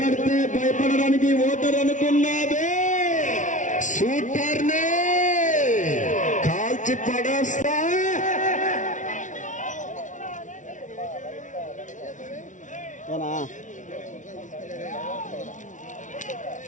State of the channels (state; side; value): late; right; 0.37 ms